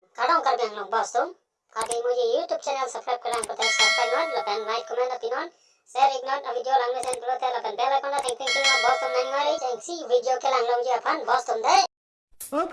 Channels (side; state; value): both; identical; correlation 1.00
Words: Tolong kar biang long bos tum. Kati मुझे YouTube channel subscribe करना पड़ता है subscribe not lapan like comment opinion share ignore a video lang sen pulo te lapan bell icon thank you bos tum nani mari see video ke lang long je aphan bos tum de. Oh,